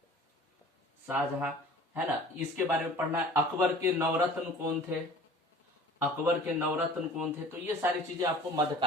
है ना, इसके बारे में पढ़ना है। अकबर के नवरत्न कौन थे, तो ये सारी चीजें आपको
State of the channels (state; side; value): normal; both; correlation 0.45